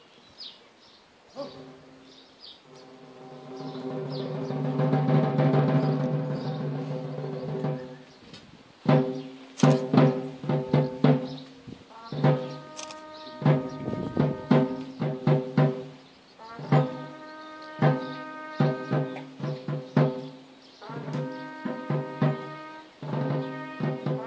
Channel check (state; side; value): identical; both; correlation 1.00